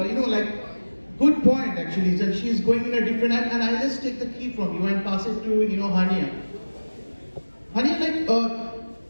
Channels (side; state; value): both; inverted; correlation -1.00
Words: good point actually. That she's going in a different and I'll just take the key from you and pass it to Haniya. Haniya, like